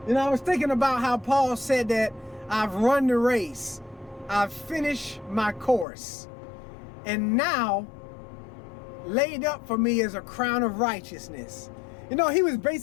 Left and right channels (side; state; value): right; drops out; at 5.9 s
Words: You know, I was thinking about how Paul said that I've run the race. I've finished my course. And now, laid up for me is a crown of righteousness. You know, he was